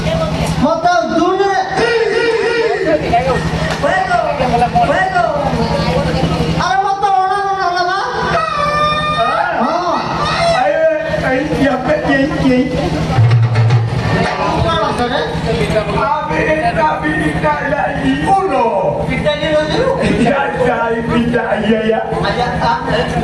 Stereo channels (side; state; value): both; identical; correlation 1.00